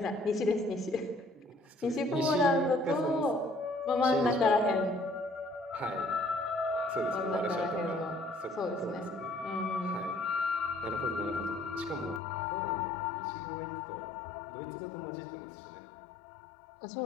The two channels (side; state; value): right; drops out; at 12.2 s